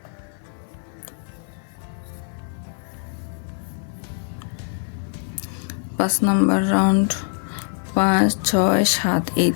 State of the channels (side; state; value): right; silent; digital silence